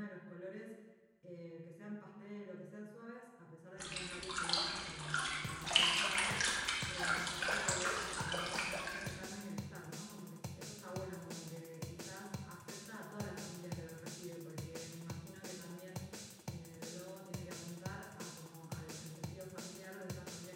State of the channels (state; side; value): identical; both; correlation 1.00